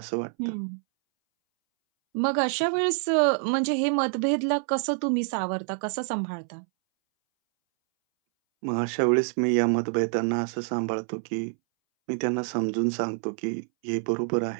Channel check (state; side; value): silent; left; 60 dB below the other